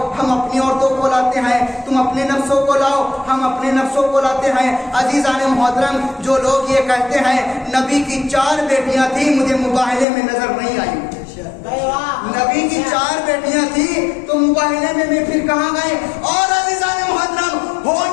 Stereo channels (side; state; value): right; drops out; at 10.1 s